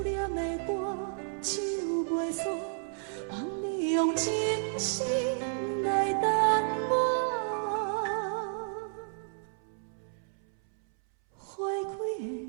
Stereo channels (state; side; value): silent; left; 57 dB below the other